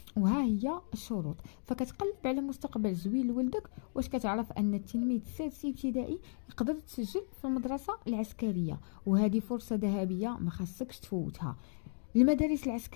وها هي الشروط. فكتقلب على مستقبل زوين لولدك، واش كتعرف ان التلميذ السادس ابتدائي يقدر تسجل في المدرسه العسكريه، وهذه فرصه ذهبيه ما خاصكش تفوتها. المدارس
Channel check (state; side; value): silent; right; digital silence